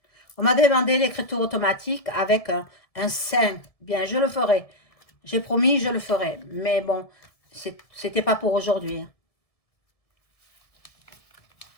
On m'a demandé l'écriture automatique avec un 5. Bien, je le ferai. J'ai promis, je le ferai. Mais bon, c'était pas pour aujourd'hui.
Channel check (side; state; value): right; late; 1.7 ms